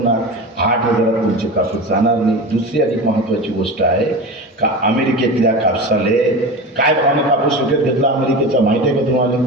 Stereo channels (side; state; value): both; normal; correlation 0.28